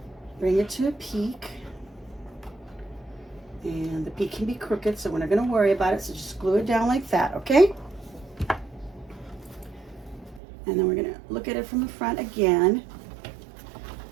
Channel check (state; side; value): drops out; left; at 10.4 s